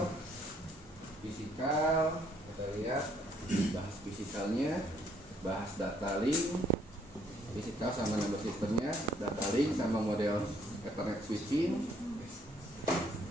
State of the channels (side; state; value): both; normal; correlation 0.66